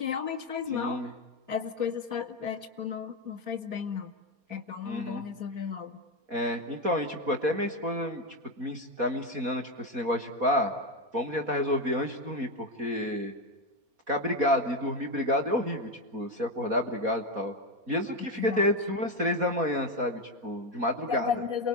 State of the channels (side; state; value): left; late; 4.2 ms